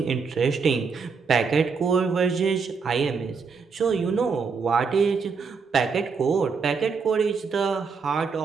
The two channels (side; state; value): left; quieter; 5.3 dB